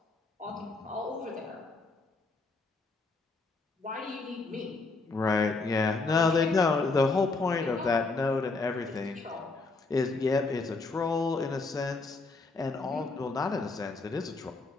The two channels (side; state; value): right; quieter; 3.7 dB